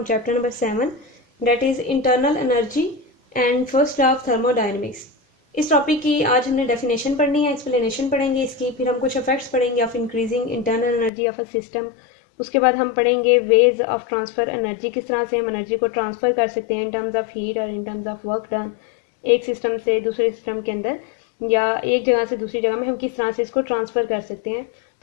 chapter number 7, that is internal energy and first law of thermodynamics. इस टॉपिक की आज हमने डेफिनेशन पढ़नी है, एक्सप्लेनेशन पढ़ेंगे इसकी, फिर हम कुछ इफेक्ट्स पढ़ेंगे of increasing internal energy of a system. उसके बाद हम पढ़ेंगे वेज ऑफ ट्रांसफ़र एनर्जी, किस तरह से हम एनर्जी को ट्रांसफ़र कर सकते हैं इन टर्म्स ऑफ हीट और in terms of work done, एक सिस्टम से दूसरे सिस्टम के अंदर या एक जगह से दूसरी जगह में हम किस तरह से इसको ट्रांसफ़र कर सकते हैं।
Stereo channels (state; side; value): drops out; right; at 11.1 s